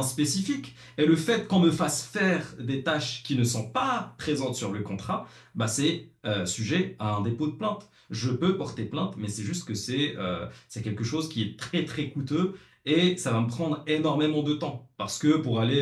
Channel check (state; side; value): identical; both; correlation 1.00